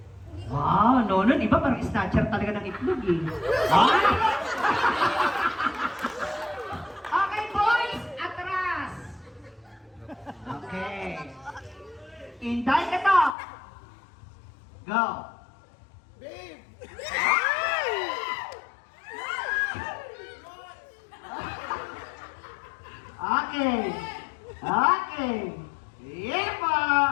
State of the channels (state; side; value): drops out; right; at 13.4 s